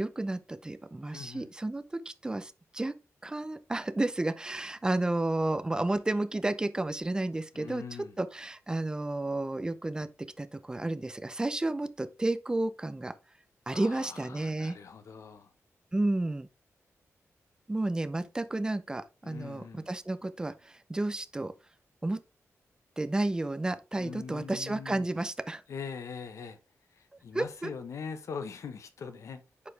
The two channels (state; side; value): normal; both; correlation 0.96